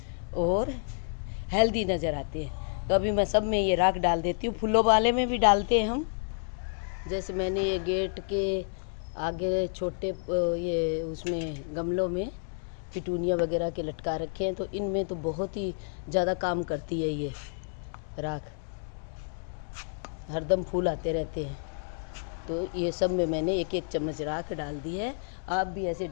और हेल्दी नज़र आते हैं। तो अभी मैं सब में ये राख डाल देती हूँ। फूलों वाले में भी डालते हैं हम, जैसे मैंने ये गेट के आगे छोटे ये उसमें गमलों में पिटूनिया वगैरह के लटका रखे हैं, तो इनमें तो बहुत ही ज़्यादा काम करती है ये राख, हरदम फूल आते रहते हैं। तो ये सब में मैंने एक एक चम्मच राख डाल दी है। आप भी ऐसे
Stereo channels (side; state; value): right; silent; digital silence